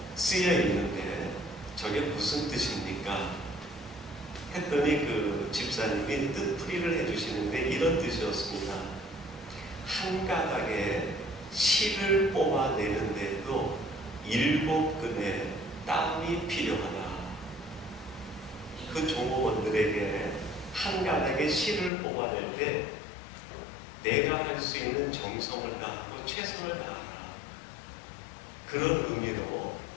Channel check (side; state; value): right; drops out; at 21.9 s